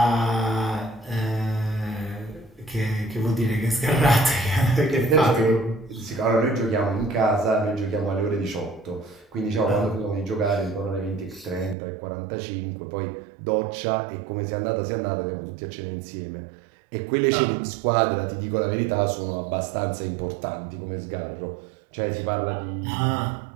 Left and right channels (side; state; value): left; drops out; at 11.8 s